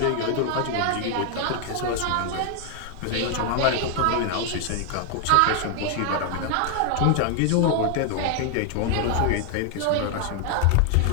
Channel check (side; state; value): both; different; correlation 0.00